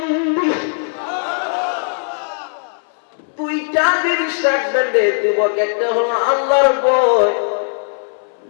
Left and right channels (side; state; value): right; silent; 64 dB below the other